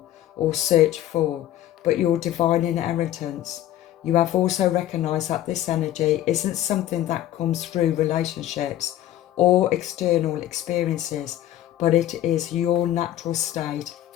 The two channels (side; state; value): right; quieter; 12.8 dB